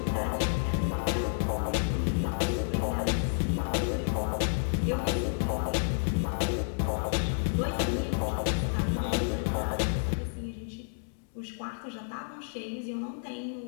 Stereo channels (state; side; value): silent; right; digital silence